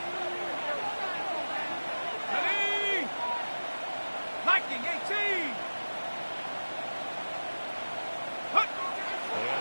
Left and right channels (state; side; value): inverted; both; correlation -1.00